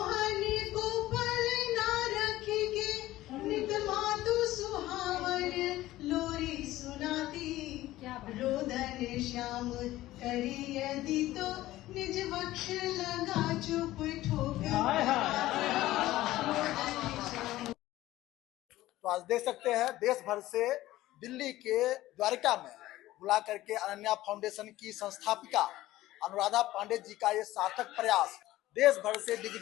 को पल ना रखेगे नित मातु सुहावन लोरी सुनाती रोदन श्याम करी यदि तो निज वक्ष लगा चुप ठोकर तो आज देख सकते हैं देश भर से दिल्ली के द्वारका में बुला करके अनन्या फाउंडेशन की संस्थापिका अनुराधा पांडे जी का ये सार्थक प्रयास देश भर से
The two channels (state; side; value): quieter; right; 16.0 dB